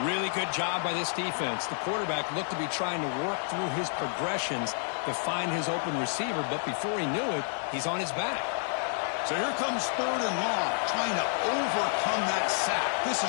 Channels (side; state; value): right; silent; 58 dB below the other